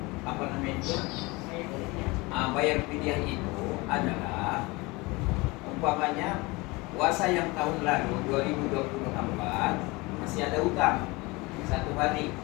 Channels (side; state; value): right; quieter; 24.1 dB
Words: apa namanya itu bayar fidyah itu adalah umpamanya puasa yang tahun lalu 2024 masih ada utang 1 hari,